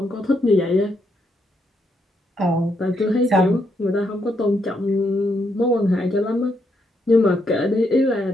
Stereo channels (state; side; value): normal; both; correlation 0.77